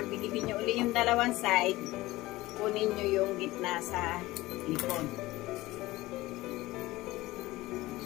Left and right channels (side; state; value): right; quieter; 18.7 dB